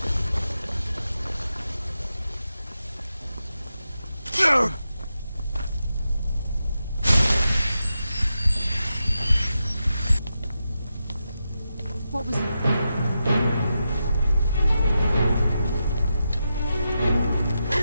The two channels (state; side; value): inverted; both; correlation -0.88